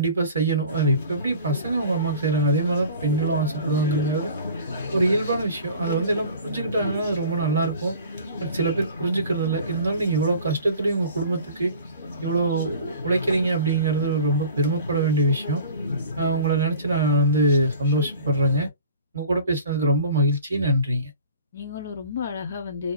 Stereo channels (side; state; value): both; inverted; correlation -0.45